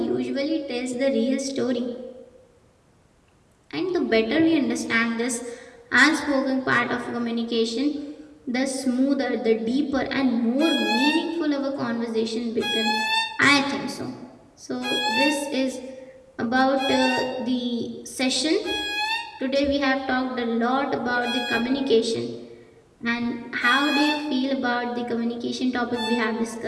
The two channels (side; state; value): both; identical; correlation 1.00